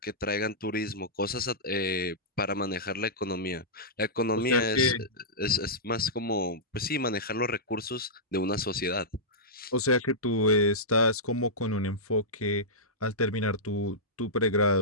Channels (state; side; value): normal; both; correlation -0.13